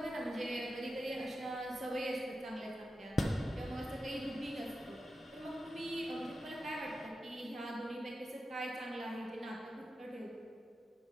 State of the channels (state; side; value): normal; both; correlation 0.91